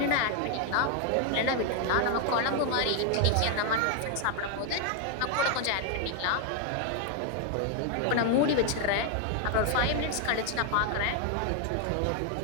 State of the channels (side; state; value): both; different; correlation 0.00